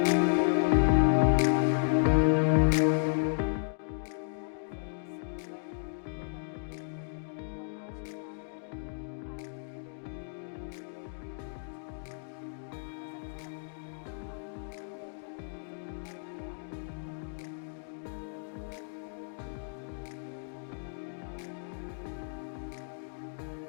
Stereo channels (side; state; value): right; silent; digital silence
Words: Hello friends, welcome. मैं डॉक्टर पूनम मग्गो और आज हम बात करेंगे आयरन की गोली क्यों लेना ज़रूरी है प्रेगनेंसी में। तो सबसे पहले तो आपको ये जानने की ज़रूरत है कि आयरन क्या होता है, क्यों चाहिए होता है प्रेगनेंसी में, क्यों सारे डॉक्टर बार बार आयरन की गोली खाने के लिए बोलते